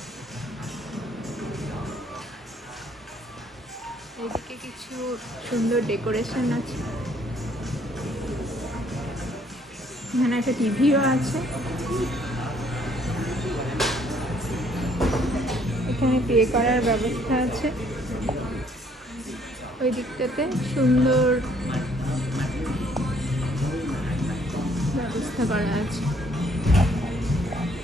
এদিকে কিছু সুন্দর ডেকোরেশন আছে, এখানে একটা টিভিও আছে। এখানে পে করার ব্যবস্থা আছে, ওই দিকটাতে সুন্দর ব্যবস্থা করা আছে।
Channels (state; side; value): normal; both; correlation 0.64